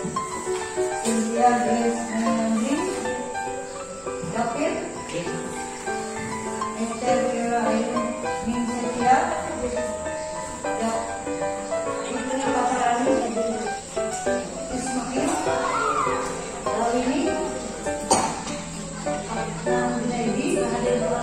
India Grace Menandi, David, Esther Kira Ayu Ningsetia, Fitri Paparani, Ismail, Lawini, Nadi,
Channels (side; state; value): both; identical; correlation 1.00